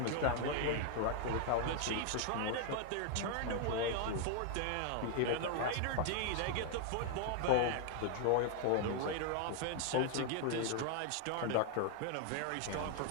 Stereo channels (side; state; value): both; different; correlation 0.00